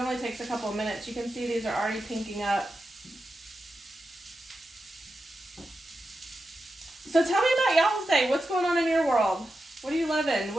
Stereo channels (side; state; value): both; normal; correlation 0.90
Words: takes a couple of minutes. You can see these are already pinking up. So tell me about y'all's day. What's going on in your world? What are you loving?